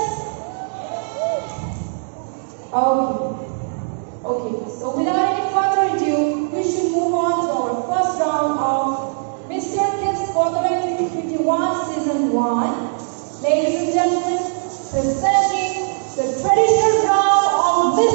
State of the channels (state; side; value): silent; left; 64 dB below the other